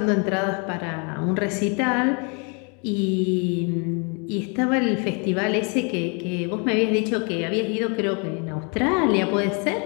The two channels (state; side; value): quieter; right; 35.0 dB